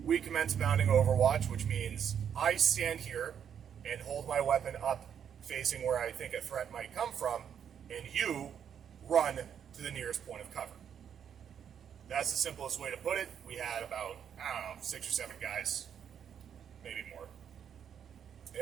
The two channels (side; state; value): left; quieter; 8.4 dB